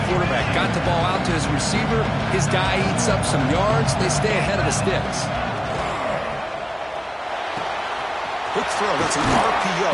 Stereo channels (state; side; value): identical; both; correlation 1.00